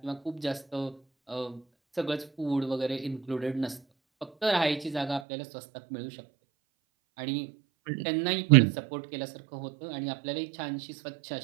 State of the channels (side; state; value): left; drops out; at 5.2 s